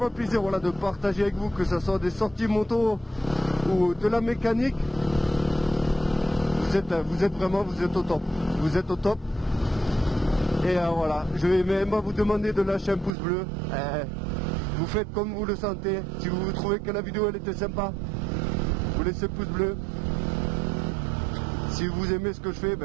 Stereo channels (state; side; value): drops out; left; at 13.1 s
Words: plaisir voilà, de partager avec vous, que ce soit des sorties moto ou de la mécanique. Vous êtes vraiment au top. Vous êtes au top. Et voilà, je vais même vous demander de lâcher un pouce bleu. Vous faites comme vous le sentez. Si vous trouvez que la vidéo elle était sympa, vous laissez le pouce bleu. Si vous aimez ce que je fais,